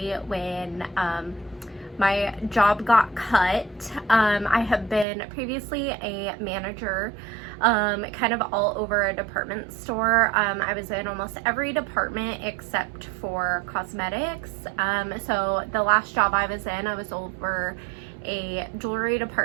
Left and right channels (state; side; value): drops out; left; at 5.1 s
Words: when my job got cut. I have been previously a manager kind of all over a department store. I was in almost every department except for cosmetics. So the last job I was in, I was over a jewelry